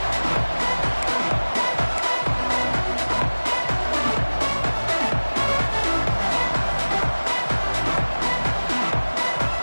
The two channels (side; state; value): both; inverted; correlation -1.00